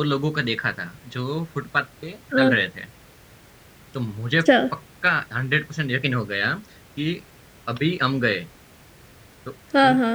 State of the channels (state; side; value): identical; both; correlation 1.00